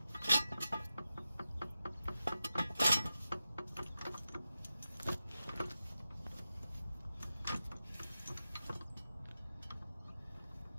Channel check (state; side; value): inverted; both; correlation -0.92